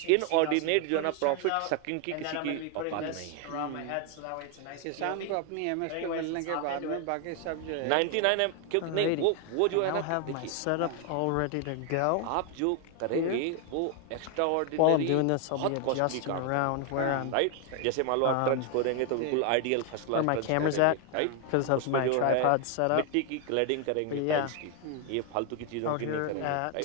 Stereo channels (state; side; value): different; both; correlation 0.01